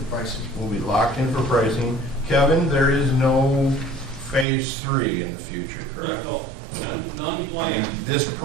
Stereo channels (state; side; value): drops out; left; at 4.5 s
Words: pricing. we'll be locked in for pricing. Kevin, there is no phase 3 in the future, correct? No, none And planned. this